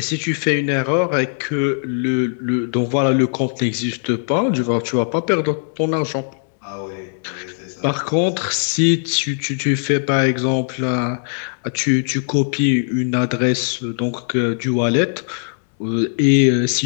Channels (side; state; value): right; silent; digital silence